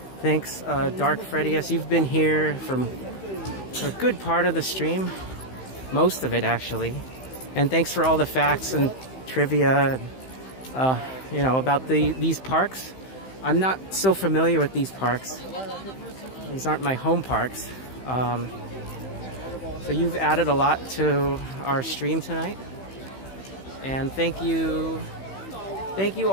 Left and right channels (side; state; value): right; late; 15 ms